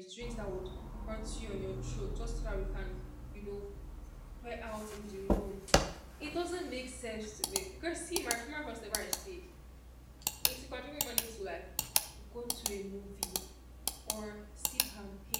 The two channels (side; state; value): both; identical; correlation 1.00